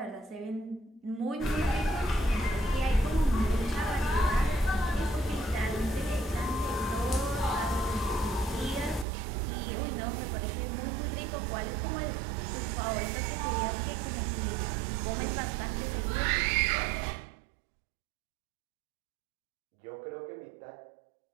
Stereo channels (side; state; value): left; drops out; at 9.1 s